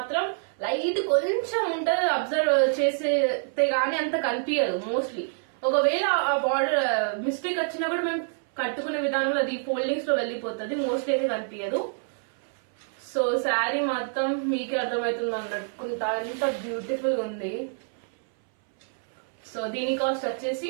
లైట్ కొంచెం ఉంటుంది. అబ్జర్వ్ చేస్తే గానీ అంత కనిపించదు మోస్ట్లీ. ఒకవేళ ఆ బార్డర్ మిస్టేక్ వచ్చినా కూడా మేము కట్టుకునే విధానంలో అది ఫోల్డింగ్స్ లో వెళ్ళిపోతుంది, మోస్ట్లీ అయితే కనిపించదు. సో శారీ మొత్తం మీకే అర్థమవుతుంది అన్నట్టుకుంటా, ఎంత బ్యూటిఫుల్ ఉంది. సో దీని కాస్ట్ వచ్చేసి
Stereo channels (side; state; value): left; silent; 60 dB below the other